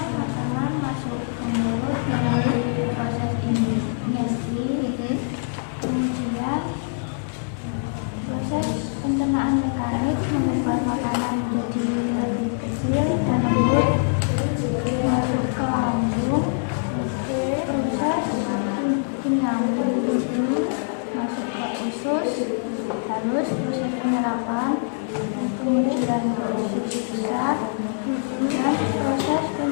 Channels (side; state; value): right; silent; digital silence